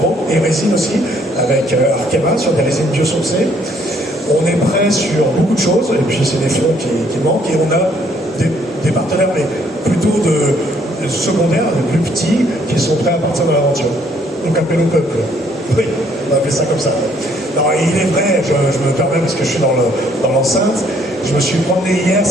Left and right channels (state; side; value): normal; both; correlation 0.66